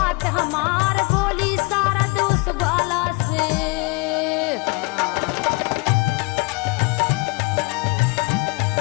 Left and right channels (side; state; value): right; quieter; 28.2 dB